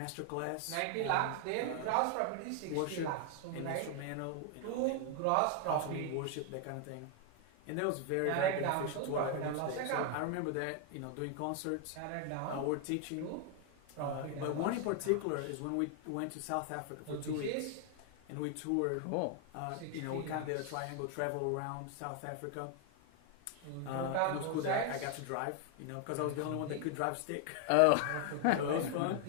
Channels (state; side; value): different; both; correlation 0.00